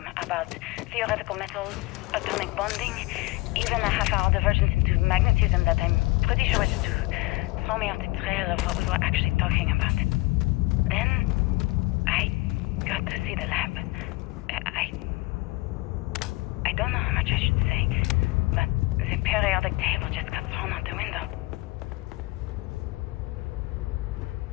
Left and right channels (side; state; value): right; quieter; 21.6 dB